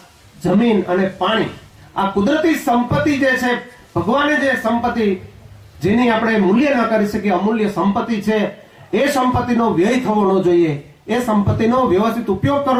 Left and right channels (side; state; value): both; identical; correlation 1.00